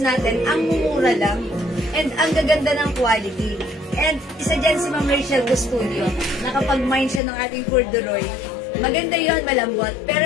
natin, ang mumura lang and ang gaganda ng quality. And isa dyan si Ma'am Rachel Custudio, nakapag-mind siya ng ating corduroy. Maganda yon, malambot. Pero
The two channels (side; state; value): right; drops out; at 7.2 s